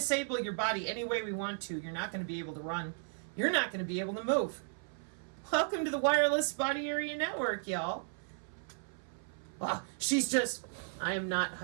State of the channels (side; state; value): left; silent; 54 dB below the other